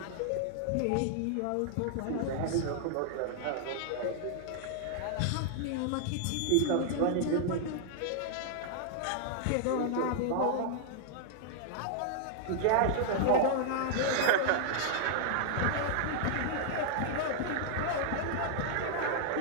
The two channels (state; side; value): different; both; correlation -0.01